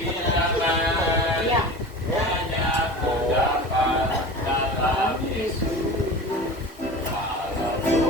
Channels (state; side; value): normal; both; correlation 0.34